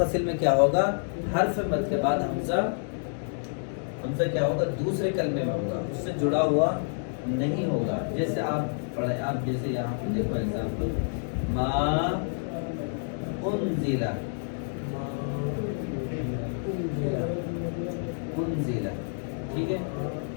میں کیا ہوگا؟ حرف مد کے بعد حمزہ کیا ہوگا؟ دوسرے کلمے میں ہوگا، اس سے جڑا ہوا نہیں ہوگا۔ جیسے آپ پڑھیں، آپ جیسے یہاں پہ دیکھو ایگزامپل، ما انزل، ٹھیک ہے۔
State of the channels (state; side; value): silent; right; digital silence